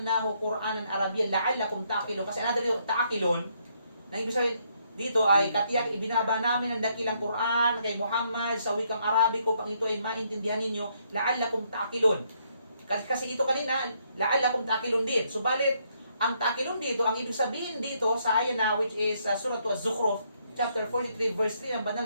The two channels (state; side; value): inverted; both; correlation -0.73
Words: Qur'anan Arabiyyan la'allakum ta'qilun. Kasi another ta'qilun, na ibig sabihin dito ay katiyak ibinaba namin ang dakilang Qur'an kay Muhammad sa wikang Arabiko upang ito ay maintindihan ninyo, la'allakum ta'qilun. Kasi ito kanina, la'allakum ta'qilun din. Subalit, ang ta'qilun dito, ang ibig sabihin dito sa ayan na which is Surah Az-Zukhruf, chapter 43, verse 3 ng banal